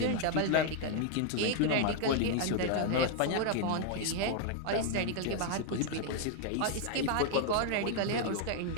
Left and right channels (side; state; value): both; different; correlation 0.00